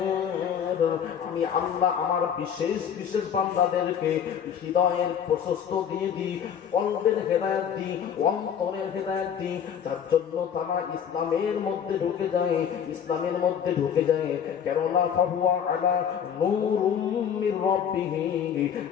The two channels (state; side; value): quieter; right; 8.3 dB